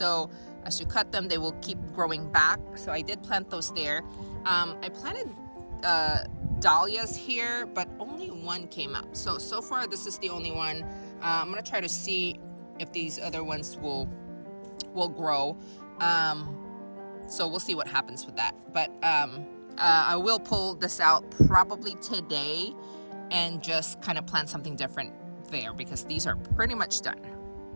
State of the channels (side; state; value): both; inverted; correlation -1.00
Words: as you cut them, they will keep growing back. So I did plant those there. I planted dahlias here, but only one came up. So far this is the only one. I'm gonna try to see if these other ones will grow. So we'll see what happens with that. But I will pull this out probably today and just kind of plant something different there, because these are pretty much done.